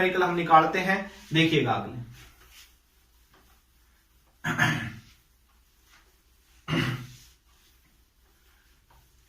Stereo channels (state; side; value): identical; both; correlation 1.00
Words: हम निकालते हैं, देखिएगा अगले।